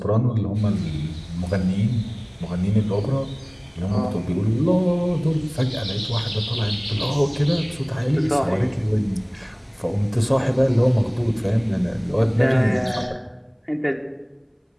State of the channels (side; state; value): both; identical; correlation 1.00